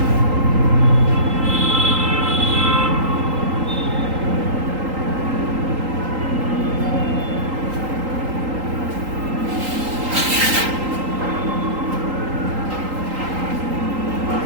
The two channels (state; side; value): late; left; 3.8 ms